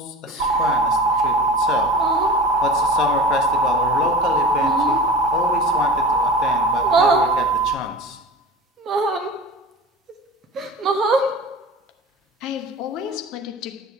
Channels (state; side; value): normal; both; correlation 0.36